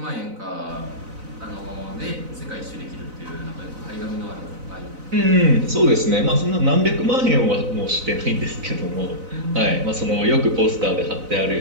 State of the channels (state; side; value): late; left; 4.0 ms